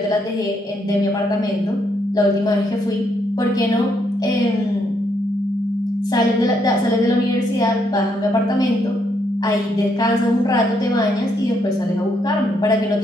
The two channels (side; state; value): both; normal; correlation 0.75